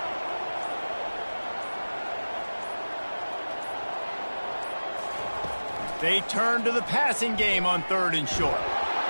They turn to the passing game on 3rd and short.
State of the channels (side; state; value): both; inverted; correlation -1.00